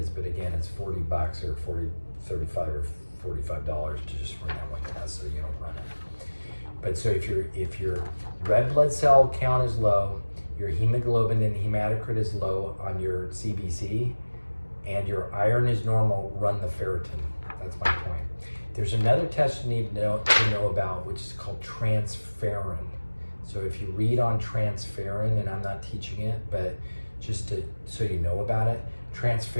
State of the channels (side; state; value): both; inverted; correlation -1.00